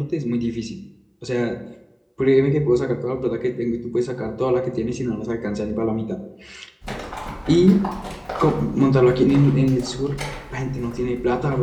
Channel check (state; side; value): identical; both; correlation 1.00